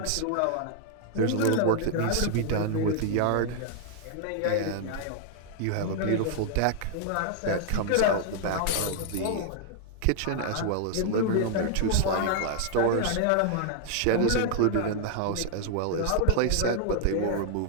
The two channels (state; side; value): different; both; correlation 0.00